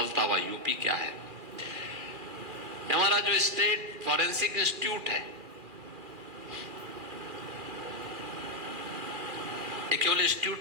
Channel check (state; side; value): late; left; 2.4 ms